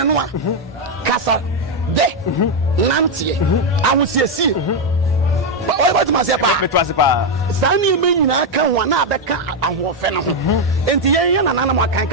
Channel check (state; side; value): normal; both; correlation 0.03